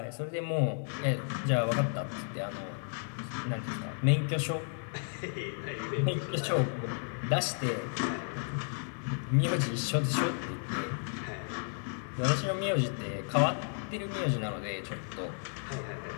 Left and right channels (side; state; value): right; silent; 56 dB below the other